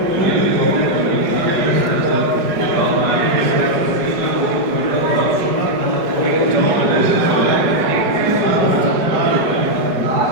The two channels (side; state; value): left; late; 5.1 ms